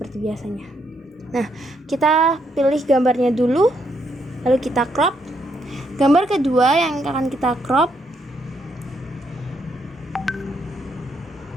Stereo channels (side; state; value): both; normal; correlation 0.75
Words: biasanya. Nah, kita pilih gambarnya dulu, lalu kita crop. Gambar kedua yang akan kita crop,